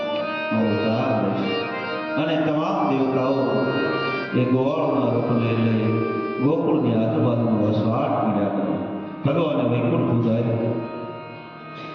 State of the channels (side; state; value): both; identical; correlation 1.00